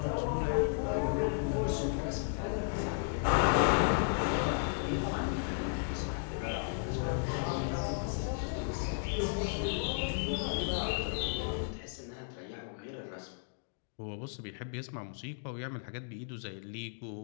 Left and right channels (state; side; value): silent; right; digital silence